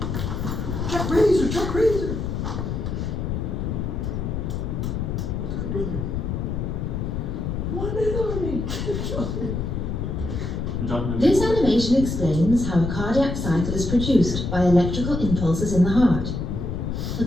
Chuck Razor, Chuck Razor. What's good, brother? One army. This animation explains how a cardiac cycle is produced by electrical impulses in the heart. The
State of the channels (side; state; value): left; noise; rumble, 2 dB below the sound